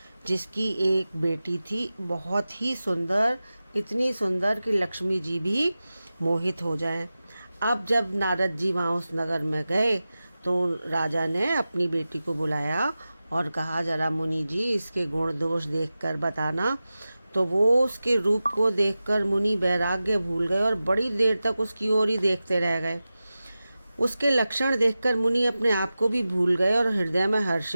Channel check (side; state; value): both; inverted; correlation -0.95